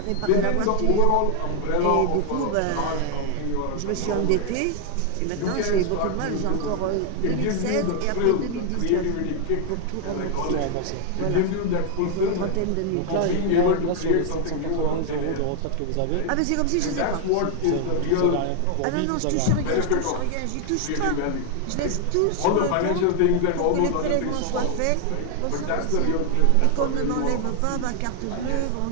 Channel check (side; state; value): both; different; correlation 0.00